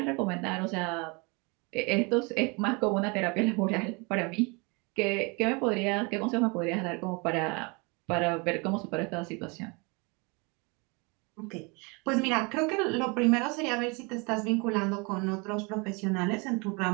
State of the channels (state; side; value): quieter; left; 29.6 dB